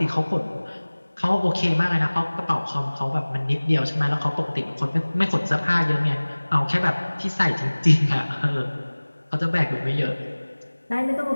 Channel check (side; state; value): both; inverted; correlation -1.00